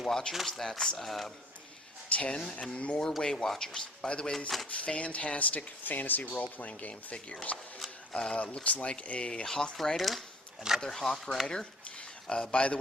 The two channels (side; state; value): both; normal; correlation 0.52